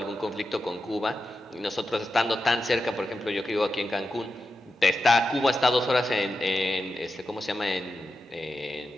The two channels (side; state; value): both; normal; correlation 0.90